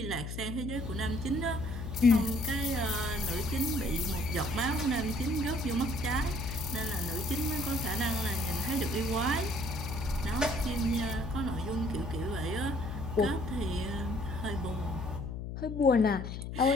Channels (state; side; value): noise; left; hum, 6 dB below the sound